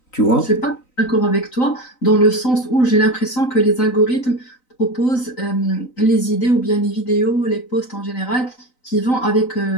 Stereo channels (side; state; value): right; late; 3.9 ms